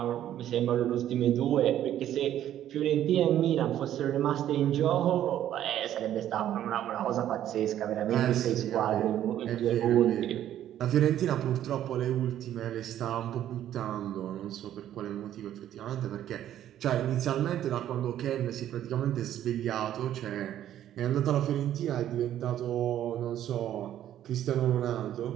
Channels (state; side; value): quieter; left; 11.6 dB